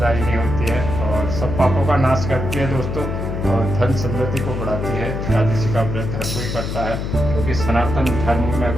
होती है और सब पापों का नाश करती है दोस्तों, और धन समृद्धि को बढ़ाती है। एकादशी का व्रत हर कोई करता है, क्योंकि सनातन धर्म में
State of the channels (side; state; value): left; noise; hum, 3 dB below the sound